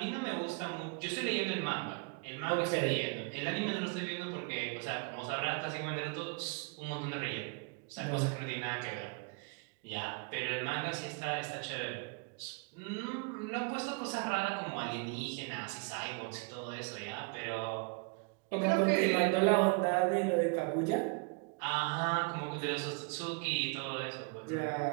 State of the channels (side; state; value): left; quieter; 32.9 dB